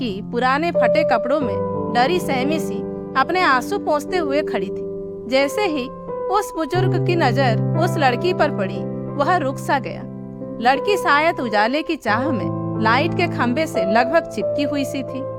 पुराने फटे कपड़ों में डरी सहमी सी अपने आंसू पोंछते हुए खड़ी थी। जैसे ही उस बुजुर्ग की नजर उस लड़की पर पड़ी, वह रुक सा गया। लड़की शायद उजाले की चाह में लाइट के खंबे से लगभग चिपकी हुई सी थी।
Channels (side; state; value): both; identical; correlation 1.00